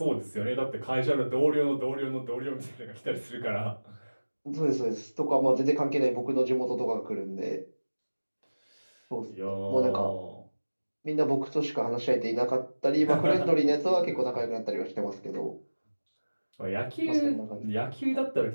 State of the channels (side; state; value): both; inverted; correlation -1.00